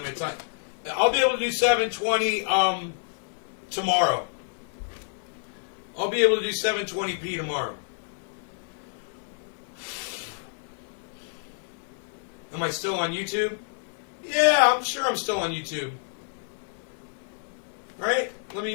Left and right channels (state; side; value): silent; right; digital silence